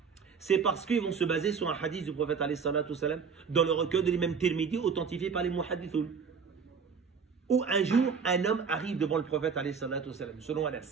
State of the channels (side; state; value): left; quieter; 5.9 dB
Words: C'est parce qu'ils vont se baser sur un hadith du prophète alayhi salatu wassalam dans le recueil de l'imam Tirmidhi authentifié par les muhaddithoun. Où un jour, un homme arrive devant le prophète alayhi salatu wassalam, selon